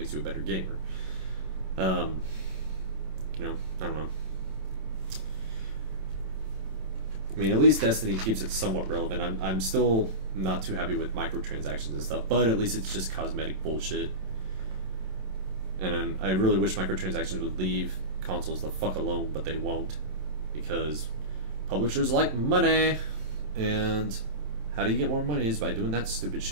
you a better gamer. I don't know. At least Destiny keeps it somewhat relevant. I'm still not too happy with microtransactions and stuff, but at least it's just cosmetic bullshit. And I really wish microtransactions would leave consoles the fuck alone, but they won't, because publishers like money, and how do you get more money is by doing that stupid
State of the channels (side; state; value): left; late; 27 ms